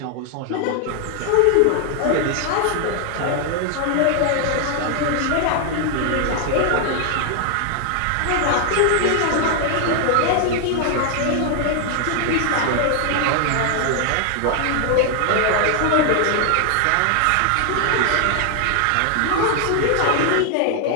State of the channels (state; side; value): different; both; correlation 0.00